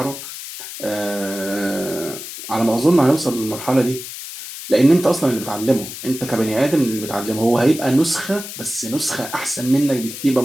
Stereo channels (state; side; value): noise; left; hiss, 10 dB below the sound